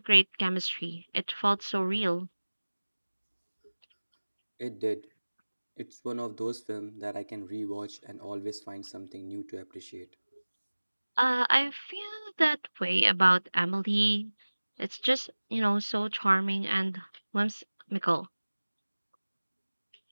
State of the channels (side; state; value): both; inverted; correlation -1.00